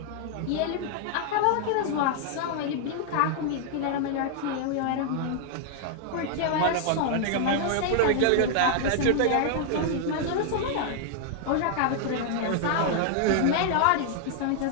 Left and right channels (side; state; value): both; different; correlation 0.00